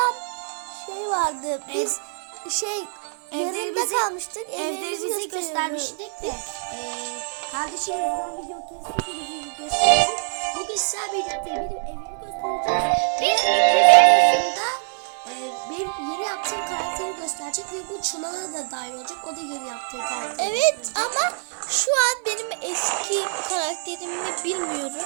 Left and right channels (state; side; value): silent; left; 62 dB below the other